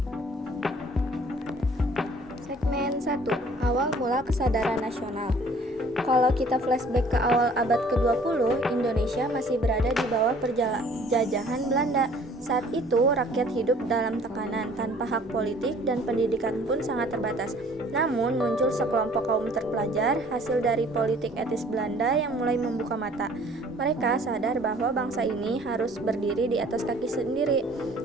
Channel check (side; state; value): both; normal; correlation 0.54